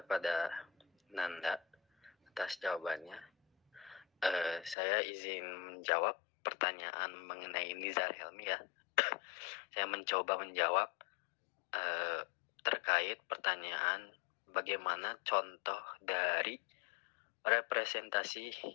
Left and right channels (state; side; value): drops out; right; at 4.8 s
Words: Nanda atas jawabannya. Saya izin menjawab pertanyaan mengenai Nizar Helmi ya. Saya mencoba menjawab terkait pertanyaan bagaimana contoh dari representasi